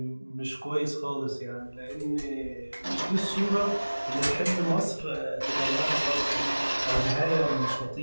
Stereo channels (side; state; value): both; inverted; correlation -1.00